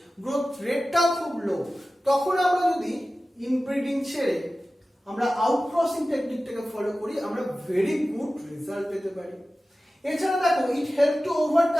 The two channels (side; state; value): both; normal; correlation 0.95